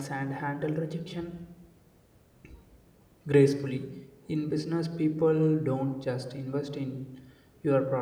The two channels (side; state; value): both; identical; correlation 1.00